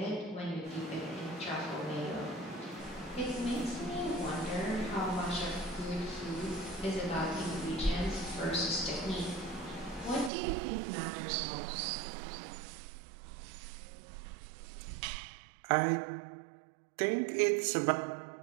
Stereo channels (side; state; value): left; drops out; at 10.3 s